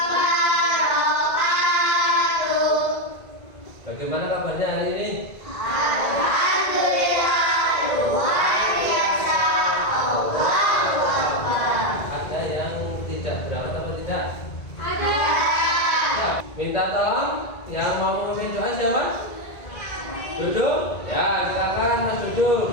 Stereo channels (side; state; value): right; late; 1.9 ms